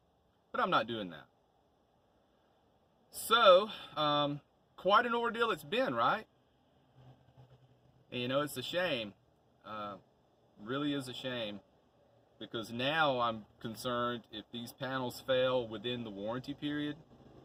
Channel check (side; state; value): both; identical; correlation 1.00